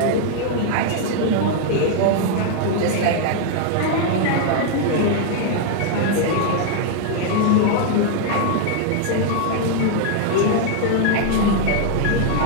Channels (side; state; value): both; different; correlation 0.00